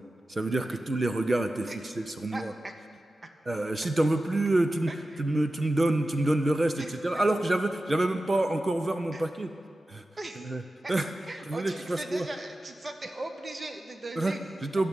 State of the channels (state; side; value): normal; both; correlation 0.94